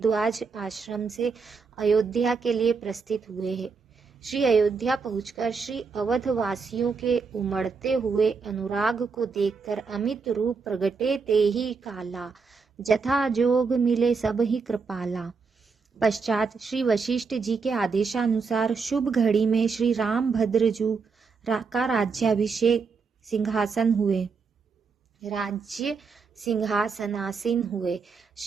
आश्रम से अयोध्या के लिए प्रस्थित हुए हैं। श्री अयोध्या पहुंचकर श्री अवध वासियों के उमड़ते हुए अनुराग को देखकर अमित रूप प्रगटे ते ही काला, जथा जोग मिले सब ही कृपाला। पश्चात श्री वशिष्ठ जी के आदेशानुसार शुभ घड़ी में श्री राम भद्रजू का राज्याभिषेक राज्य सिंहासनासीन हुए।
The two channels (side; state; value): left; quieter; 5.0 dB